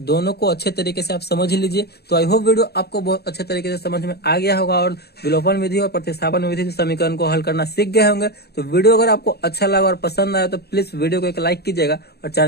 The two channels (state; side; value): late; right; 0.47 ms